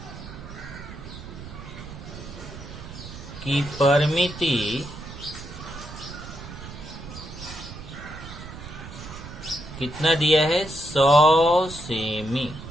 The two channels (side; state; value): right; noise; rumble, 12 dB below the sound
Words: की परिमिति कितना दिया है, 100 सेमी।